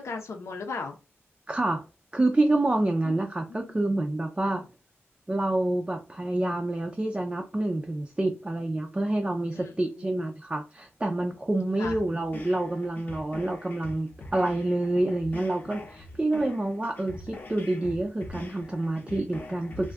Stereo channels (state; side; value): normal; both; correlation 0.96